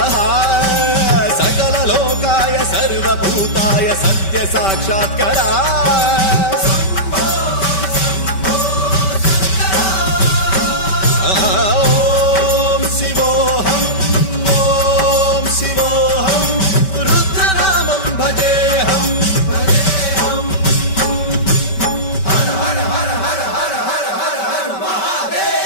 सकललोकाय सर्वभूताय सत्यसाक्षात्करा। ॐ शिवोऽहं रुद्रनामं भजेऽहम्। हर हर हर हर हर हर हर हर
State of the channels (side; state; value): right; late; 5.2 ms